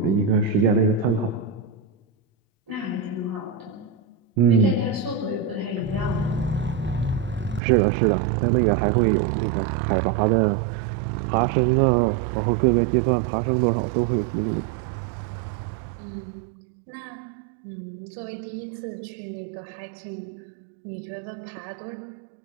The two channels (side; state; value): left; drops out; at 7.6 s